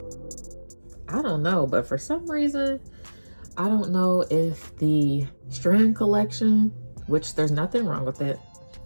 I don't know, but for some reason, I don't know if the strand collection, which there's nothing wrong with it,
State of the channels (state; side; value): inverted; both; correlation -1.00